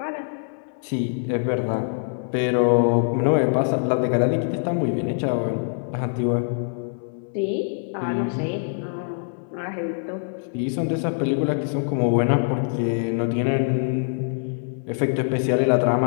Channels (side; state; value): right; silent; digital silence